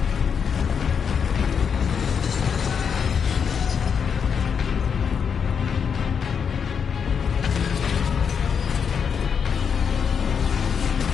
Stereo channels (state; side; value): quieter; right; 6.8 dB